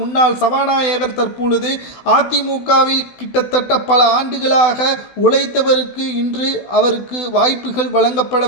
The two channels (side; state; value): right; late; 16 ms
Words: முன்னாள் சபாநாயகர் தற்பொழுது அதிமுகவில் கிட்டத்தட்ட பல ஆண்டுகளாக உழைத்தவருக்கு இன்று அவருக்கு வாய்ப்புகள்